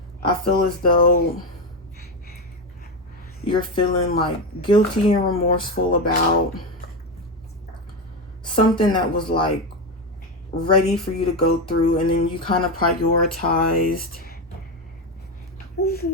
I feel as though you're feeling like guilty and remorseful about something that was like ready for you to go through, and then you kind of prioritized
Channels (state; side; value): normal; both; correlation 0.13